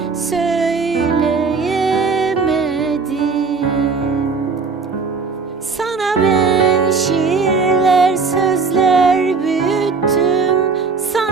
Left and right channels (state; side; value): quieter; left; 4.8 dB